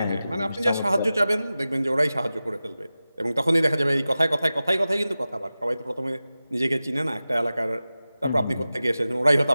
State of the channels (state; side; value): inverted; both; correlation -0.95